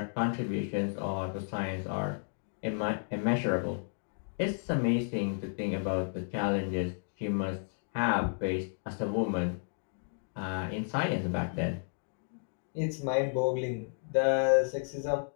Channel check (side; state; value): right; silent; digital silence